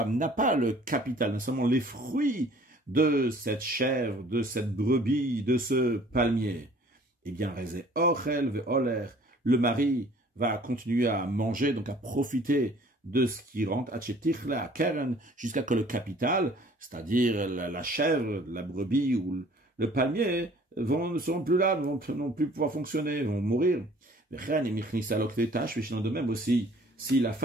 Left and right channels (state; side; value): normal; both; correlation 0.53